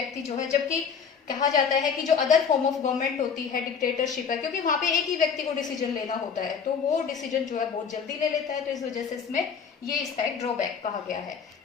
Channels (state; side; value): quieter; right; 6.5 dB